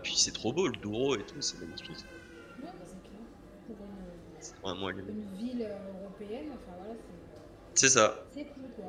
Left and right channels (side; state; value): both; identical; correlation 1.00